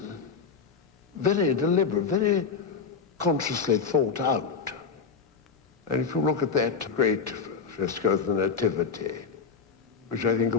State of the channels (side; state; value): right; quieter; 5.6 dB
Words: very deliberate, very consciously thought out. And if you look at that great fresco of the Nativity, which I think